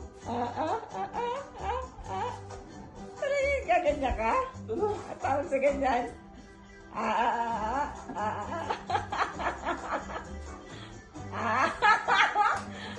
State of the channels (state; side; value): identical; both; correlation 1.00